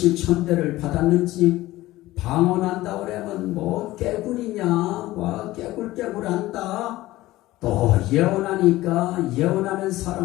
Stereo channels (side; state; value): right; quieter; 17.1 dB